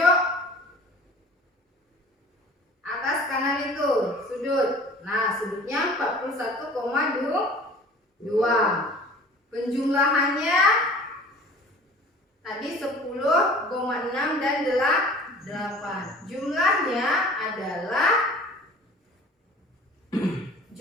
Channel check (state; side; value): normal; both; correlation 0.46